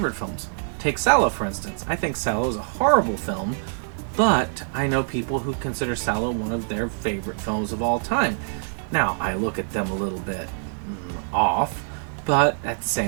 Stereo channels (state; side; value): silent; left; digital silence